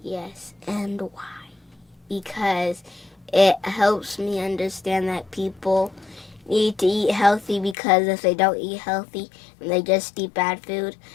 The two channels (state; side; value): drops out; right; at 7.8 s